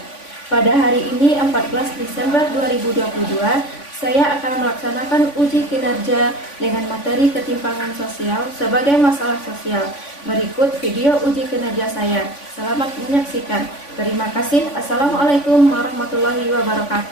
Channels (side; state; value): right; late; 3.5 ms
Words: Pada hari ini 14 Desember 2022, saya akan melaksanakan uji kinerja dengan materi ketimpangan sosial sebagai masalah sosial. Berikut video uji kinerja saya. Selamat menyaksikan. Terima kasih. Assalamualaikum warahmatullahi